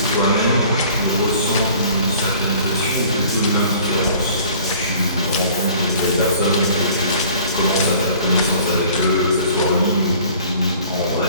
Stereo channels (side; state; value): both; inverted; correlation -0.51